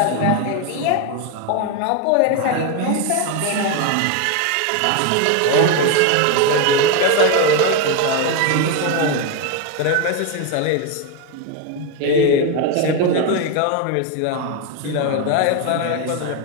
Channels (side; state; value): both; different; correlation 0.02